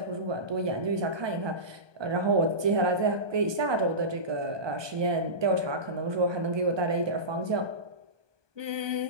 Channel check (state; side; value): late; left; 1.2 ms